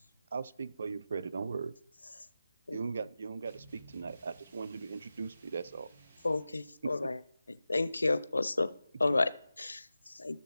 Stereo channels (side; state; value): both; inverted; correlation -0.93